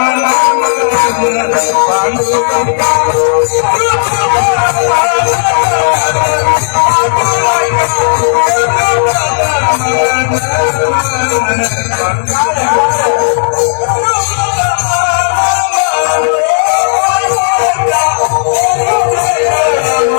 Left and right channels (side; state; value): right; silent; digital silence